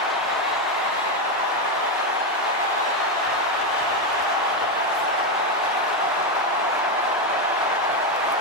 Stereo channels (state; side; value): normal; both; correlation 0.08